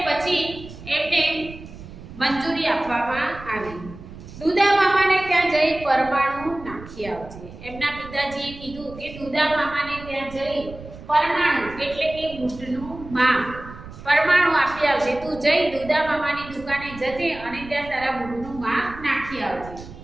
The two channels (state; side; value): noise; right; rumble, 15 dB below the sound